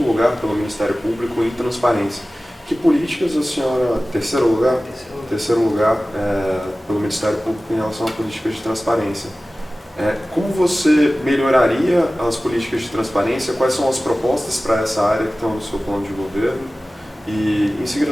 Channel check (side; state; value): both; normal; correlation 0.97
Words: lugar pelo Ministério Público em transparência. Que políticas a senhora, terceiro lugar pelo Ministério Público em relação a políticas de transparência? Como você melhoraria as políticas de transparência? Quais são as propostas para essa área que estão no seu plano de governo? E, em